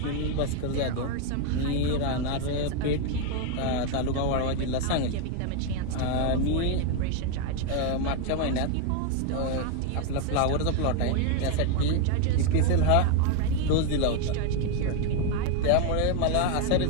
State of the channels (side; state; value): both; different; correlation 0.01